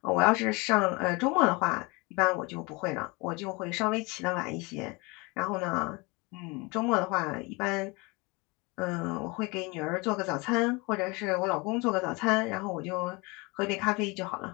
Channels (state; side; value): quieter; right; 26.7 dB